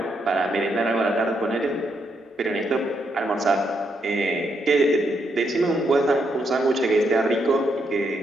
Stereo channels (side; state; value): both; normal; correlation 0.78